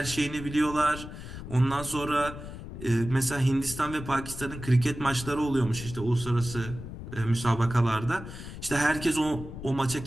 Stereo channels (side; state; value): left; noise; rumble, 11 dB below the sound